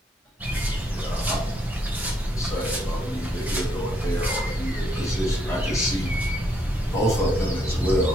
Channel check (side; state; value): both; normal; correlation 0.73